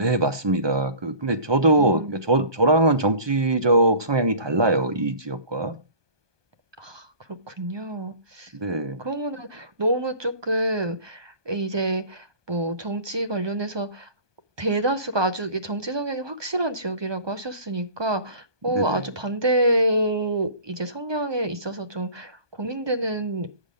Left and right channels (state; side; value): late; left; 1.2 ms